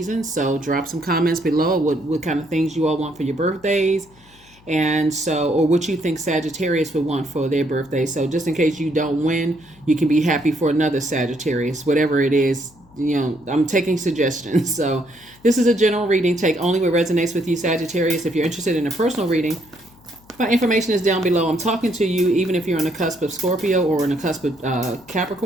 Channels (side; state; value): left; noise; hum, 28 dB below the sound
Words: So drop some comments below what kind of things you all want for your birthdays. And so, or what you think Sagittarius would want for their birthday. So just in case you don't win, you can be happy for another Sagittarius, whatever it is. You know, I'm taking suggestions. So this is a general reading. Take only what resonates with you, Sagittarius. If you're interested in a personal reading, my information is down below. I'm talking to you, even if you're on the cusp of Scorpio or on the cusp of